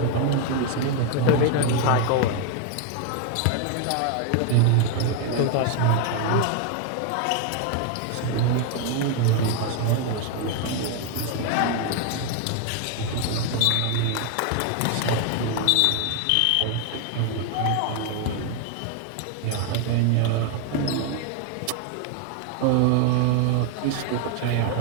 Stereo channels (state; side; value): different; both; correlation 0.01